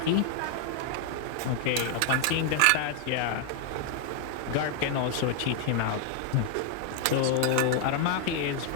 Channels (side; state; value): both; different; correlation 0.00